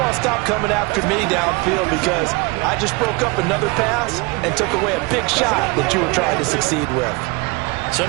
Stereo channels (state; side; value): quieter; left; 26.2 dB